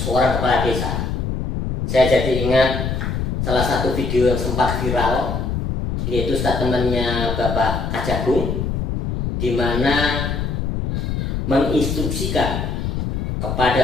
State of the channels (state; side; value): noise; left; rumble, 2 dB below the sound